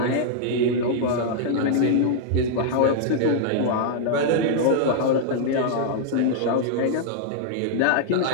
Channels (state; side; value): different; both; correlation -0.01